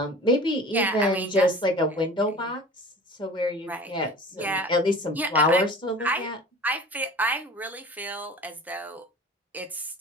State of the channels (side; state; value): both; normal; correlation 0.41